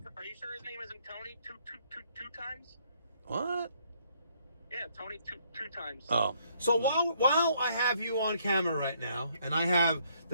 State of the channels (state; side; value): inverted; both; correlation -0.68